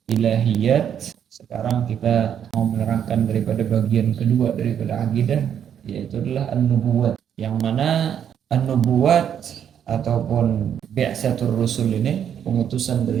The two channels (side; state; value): left; quieter; 8.9 dB